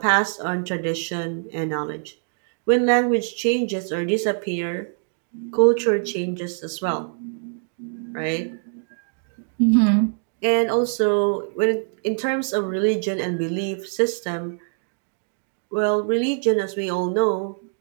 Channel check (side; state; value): left; silent; 63 dB below the other